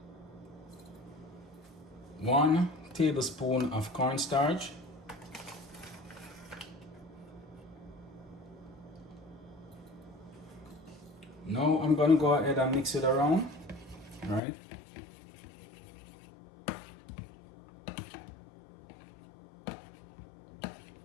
One tablespoon of cornstarch. Now I'm gonna go ahead and mix it around, right?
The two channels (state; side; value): drops out; right; at 14.4 s